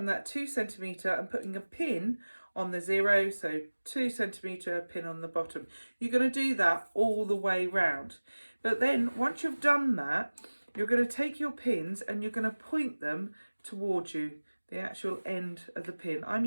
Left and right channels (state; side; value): inverted; both; correlation -1.00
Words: that 2 centimetre and putting a pin on the 0, so 2 centimetre pin on the bottom. You're going to do that all the way round. But then once you've done that, you're going to take your pins and you're going to point them towards you, the actual end of the pin. I'm